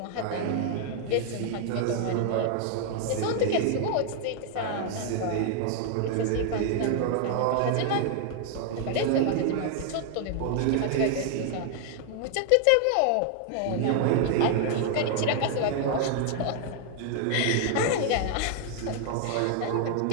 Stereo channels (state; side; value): different; both; correlation 0.00